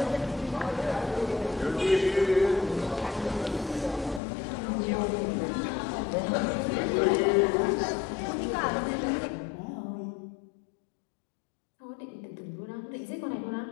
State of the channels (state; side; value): drops out; right; at 4.2 s